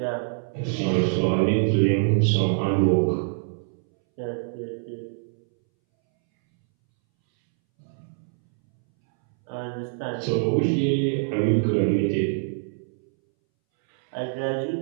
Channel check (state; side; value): silent; left; 62 dB below the other